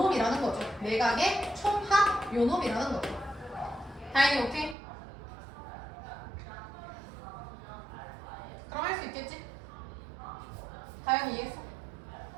거죠. 내각의 총합 요놈이라는 거죠. 다행히 오케이? 그럼 할 수 있겠지? 다행히 이해했어?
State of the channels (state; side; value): drops out; left; at 4.8 s